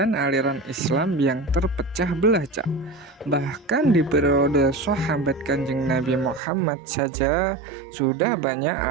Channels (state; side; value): drops out; left; at 6.4 s